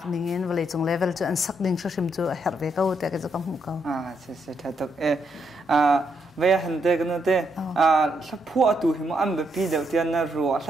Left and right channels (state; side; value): normal; both; correlation 0.77